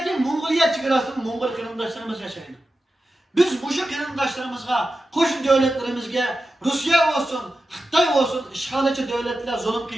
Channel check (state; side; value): normal; both; correlation 0.92